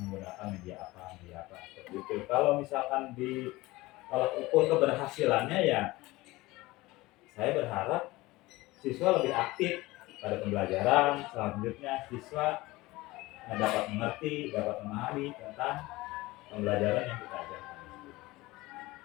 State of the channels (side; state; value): right; quieter; 20.0 dB